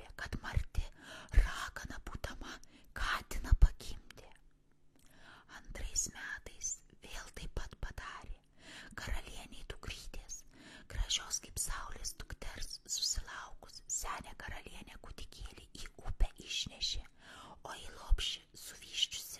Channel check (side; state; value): both; identical; correlation 1.00